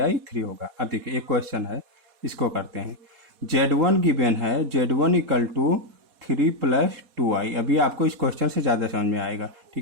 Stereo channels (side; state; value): left; late; 4.2 ms